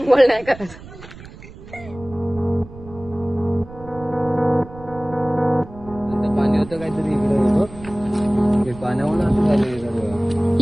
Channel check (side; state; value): right; noise; rumble, 17 dB below the sound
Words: नाही करत. पाणी होतं काहीतरी इकडे, पाण्यावर